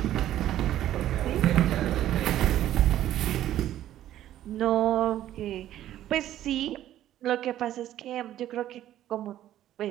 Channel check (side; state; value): left; quieter; 12.6 dB